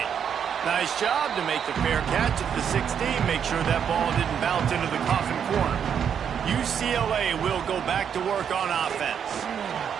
Nice job to make the fair catch at the 16. Make sure that ball didn't bounce into the coffin corner. UCLA will go back to work on offense.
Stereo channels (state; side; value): quieter; left; 8.0 dB